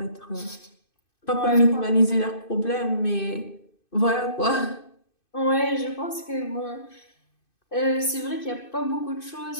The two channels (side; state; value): right; late; 2.5 ms